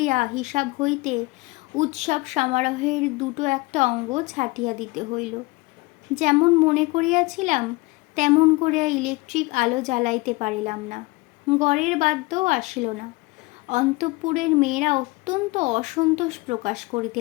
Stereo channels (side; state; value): right; quieter; 23.3 dB